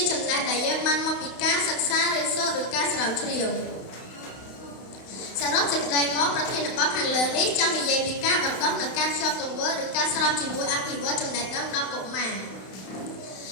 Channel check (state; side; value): late; right; 31 ms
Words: ចំណេះដែលយើងបានមកពីការសិក្សារៀនសូត្រឬការស្រាវជ្រាវសរុបសេចក្តីមកប្រធានបទខាងលើនេះចង់និយាយពីការបណ្ដុះនិងការភ្ជាប់ទង្វើឬការស្របជាមួយអភិវឌ្ឍចំណេះដឹងដល់កុមារ